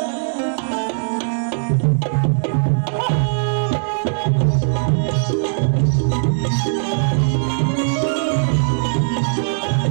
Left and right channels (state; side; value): silent; left; 66 dB below the other